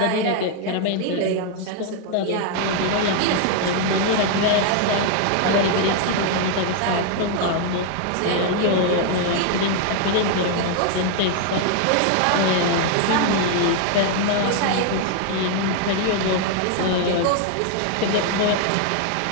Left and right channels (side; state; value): both; different; correlation 0.00